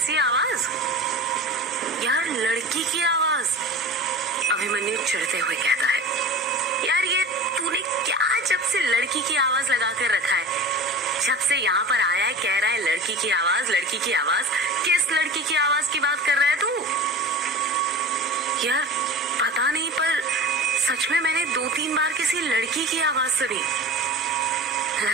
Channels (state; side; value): normal; both; correlation 0.35